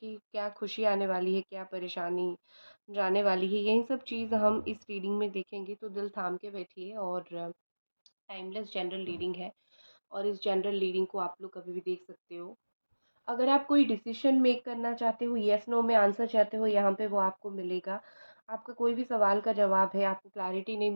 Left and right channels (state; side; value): inverted; both; correlation -1.00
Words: क्या खुशी आने वाली है, क्या परेशानी जाने वाली है, यही सब चीज़ हम इस रीडिंग में देखेंगे। तो दिल थाम के बैठिए। और टाइमलेस जनरल रीडिंग है और इस जनरल रीडिंग को आप लोग कभी भी देख सकते हो। अगर आप कोई डिसीजन मेक करना चाहते हो, येस नो में आंसर चाहते हो, यहाँ पे वो आपको मिलेगा। आपका कोई भी सवाल का जवाब है, आपको क्लैरिटी नहीं